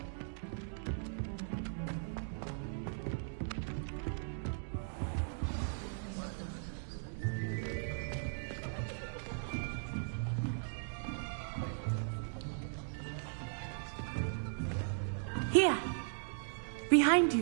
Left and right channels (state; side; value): silent; left; digital silence